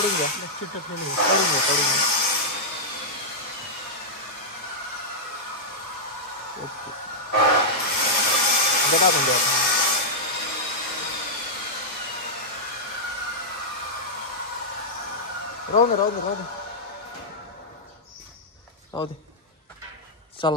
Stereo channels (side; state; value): both; normal; correlation -0.08